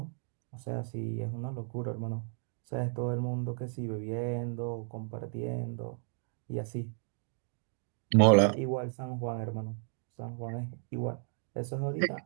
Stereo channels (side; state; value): left; silent; 55 dB below the other